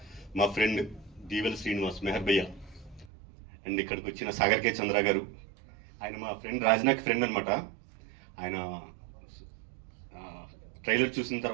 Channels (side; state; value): left; drops out; at 3.1 s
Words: మా ఫ్రెండ్ దీవెల్ శ్రీనివాస్, మెహర్ భయ్య, అండ్ ఇక్కడికి వచ్చిన సాగర్ కే చంద్ర గారు, ఆయన మా ఫ్రెండ్ రాజ్నాక్ ఫ్రెండ్ అనమాట. ఆయన ట్రైలర్ చూసిన